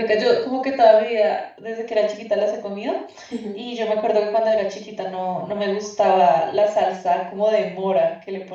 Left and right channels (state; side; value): identical; both; correlation 1.00